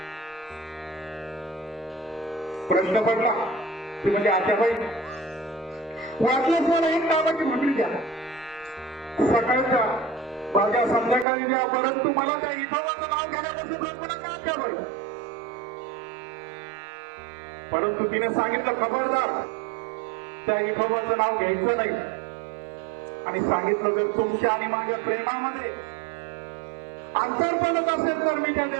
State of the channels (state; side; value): drops out; left; at 11.2 s